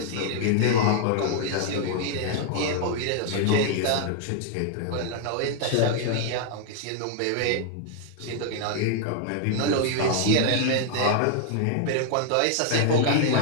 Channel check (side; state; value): both; different; correlation 0.00